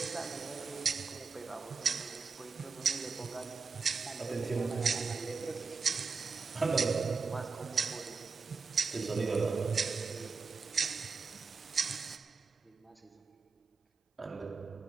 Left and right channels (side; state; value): left; quieter; 4.8 dB